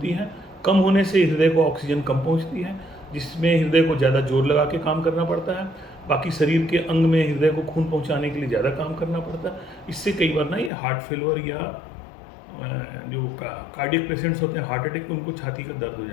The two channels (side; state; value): right; drops out; at 10.7 s